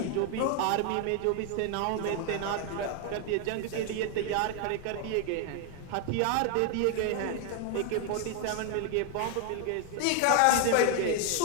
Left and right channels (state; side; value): different; both; correlation 0.01